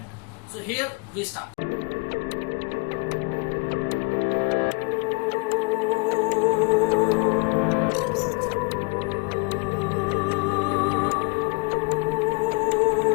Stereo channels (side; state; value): right; quieter; 30.3 dB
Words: So here we start.